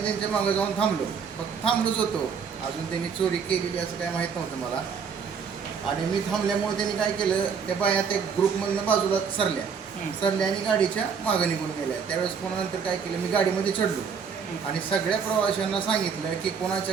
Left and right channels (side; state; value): left; quieter; 6.4 dB